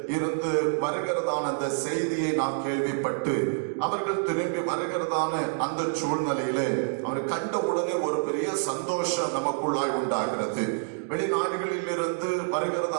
இருந்து வருகிறதான அந்த செய்தியை நாம் கேள்விப்பட்டு அவர்கள் திரும்பி வருகிறதான அந்த சூழ்நிலையில அவர் கண்ட உடனே ஒரு பெரிய சந்தோஷம் நமக்குள்ளாய் உண்டாகிறது. வெளிநாடுகளில் இருந்து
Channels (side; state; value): left; silent; digital silence